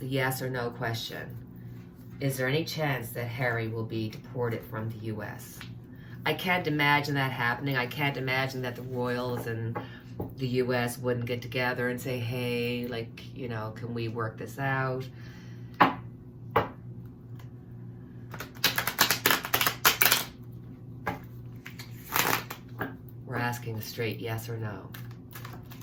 yes or no question. Is there any chance that Harry will be deported from the U.S.? I can't imagine that happening. I can't imagine that the royals and the U.S. wouldn't get together and say, hey, like, you know, can we work this out? We're asking a straight yes or no.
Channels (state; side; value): identical; both; correlation 1.00